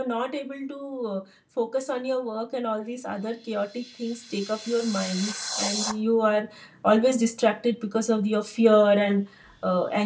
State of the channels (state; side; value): identical; both; correlation 1.00